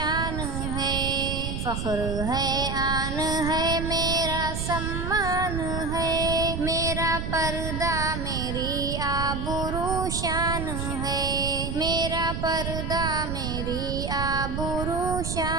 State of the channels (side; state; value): right; noise; rumble, 3 dB below the sound